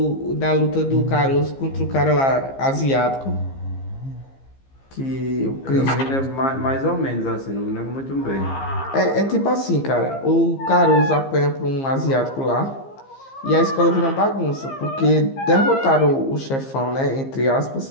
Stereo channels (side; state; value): right; late; 15 ms